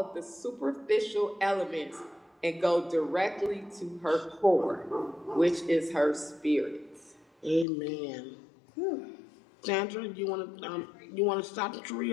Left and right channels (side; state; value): right; drops out; at 7.7 s